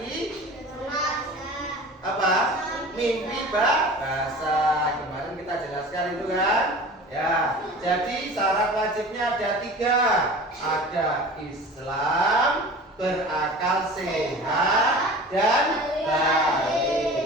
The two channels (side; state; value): both; normal; correlation 0.39